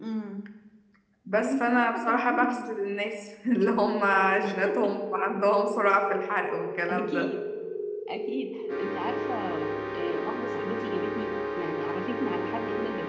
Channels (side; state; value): both; identical; correlation 1.00